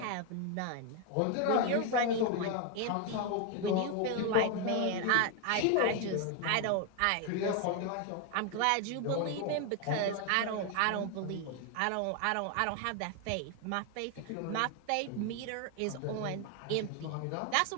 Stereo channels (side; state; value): both; different; correlation 0.01